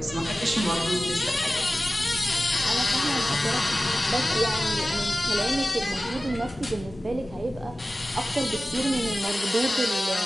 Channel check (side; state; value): both; normal; correlation 0.96